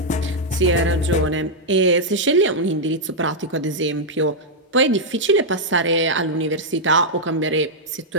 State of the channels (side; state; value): both; normal; correlation -0.04